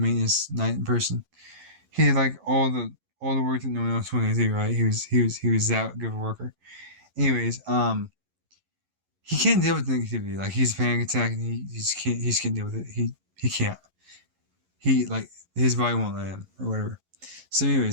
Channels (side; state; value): left; late; 11 ms